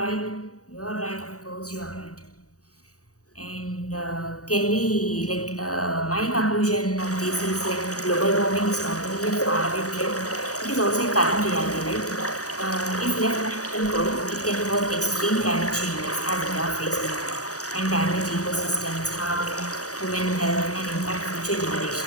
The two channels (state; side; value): late; right; 0.66 ms